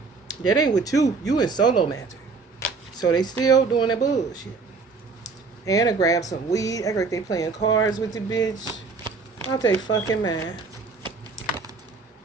That ain't with you. You in solo magic. So they still doing that bullshit. And I grab some weed. Act like they playing cards with the bitch. Out they fucking mind.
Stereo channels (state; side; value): quieter; left; 4.4 dB